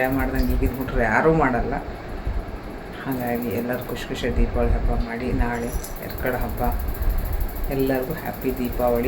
ಮಾಡ್ದಂಗೆ ಈಗಿನ ಹುಡುಗರು ಯಾರೂ ಮಾಡಲ್ಲ. ಹಾಗಾಗಿ ಎಲ್ಲರೂ ಖುಷಿ ದೀಪಾವಳಿ ಹಬ್ಬ ಮಾಡಿ. ನಾಳೆ ಎರ್ಕಡ ಹಬ್ಬ. ಎಲ್ಲರಿಗೂ ಹ್ಯಾಪಿ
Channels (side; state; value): both; identical; correlation 1.00